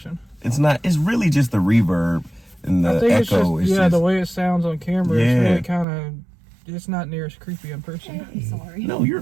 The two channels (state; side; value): drops out; left; at 5.9 s